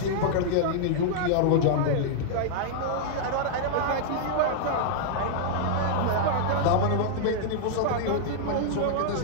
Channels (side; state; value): both; different; correlation -0.01